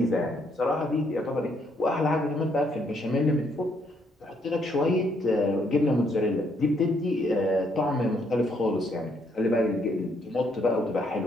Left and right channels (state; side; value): normal; both; correlation 0.71